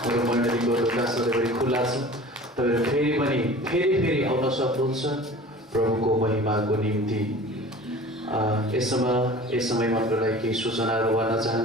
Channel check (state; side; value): normal; both; correlation 0.42